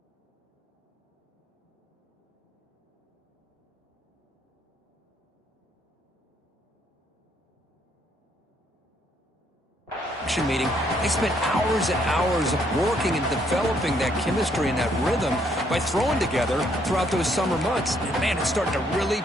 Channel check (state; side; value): normal; both; correlation 0.70